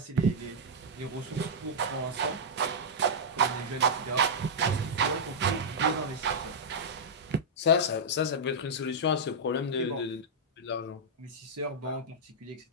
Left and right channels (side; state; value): both; normal; correlation -0.08